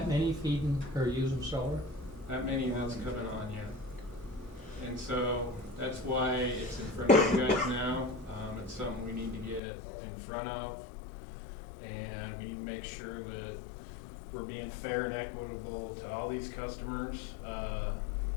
many feeding or using solar? That many that's coming on, yeah. And so that's why it's in front of you guys now. It's something we need to get in front of, and we need to make sure that we're being fair and equitable to all these customers.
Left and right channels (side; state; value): right; drops out; at 9.6 s